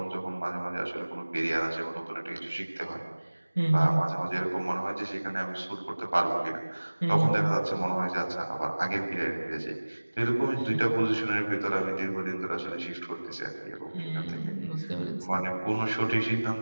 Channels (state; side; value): inverted; both; correlation -1.00